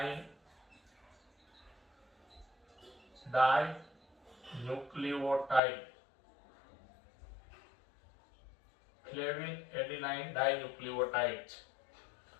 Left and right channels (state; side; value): drops out; right; at 5.6 s